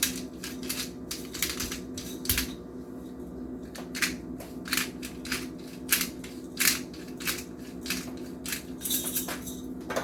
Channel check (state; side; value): identical; both; correlation 1.00